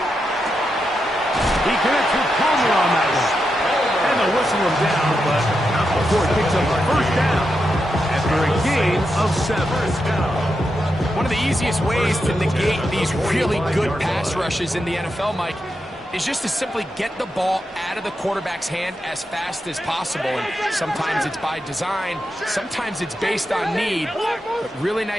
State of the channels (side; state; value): both; normal; correlation 0.86